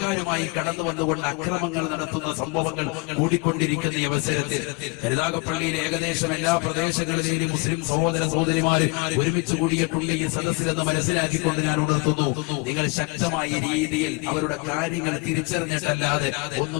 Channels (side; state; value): right; quieter; 26.3 dB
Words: കടന്നു വന്നുകൊണ്ട് അക്രമങ്ങൾ നടത്തുന്ന സംഭവങ്ങൾ കൂടിക്കൊണ്ടിരിക്കുന്ന ഈ അവസരത്തിൽ കരുനാഗപ്പള്ളിയിലെ ഏകദേശം എല്ലാ പ്രദേശങ്ങളിലെയും മുസ്ലിം സഹോദര സഹോദരിമാര് ഒരുമിച്ച് കൂടിയിട്ടുണ്ട് ഈ സദസ്സിലെന്ന് മനസ്സിലാക്കിക്കൊണ്ട് ഞാൻ ഉണർത്തുന്നു, നിങ്ങൾ ശക്തമായ രീതിയിൽ അവരുടെ കാര്യങ്ങൾ തിരിച്ചറിഞ്ഞിട്ടല്ലാതെ